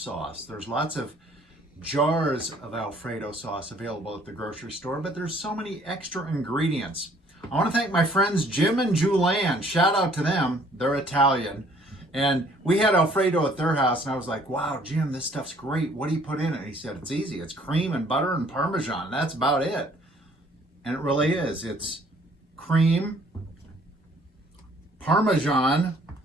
There's lots of jars of Alfredo sauce available at the grocery store, but there's so many extra ingredients. I want to thank my friends Jim and Julianne. Shout out to them. They're Italian. And we had Alfredo at their house, and I was like, wow, Jim, this stuff's great. What do you put in it? And he said, it's easy. It's cream and butter and Parmesan. That's about it. And it really is. It's cream, Parmesan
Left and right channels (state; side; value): normal; both; correlation 0.60